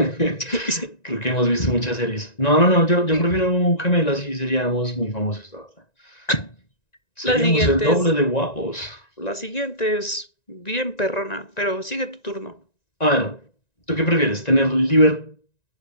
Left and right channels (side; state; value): right; late; 1.9 ms